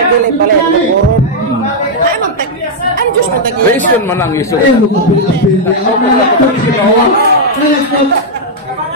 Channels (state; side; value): normal; both; correlation -0.04